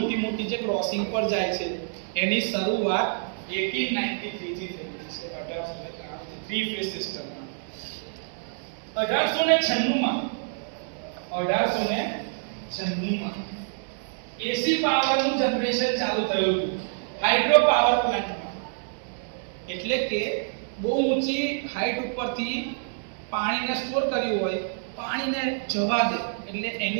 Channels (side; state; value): left; silent; 58 dB below the other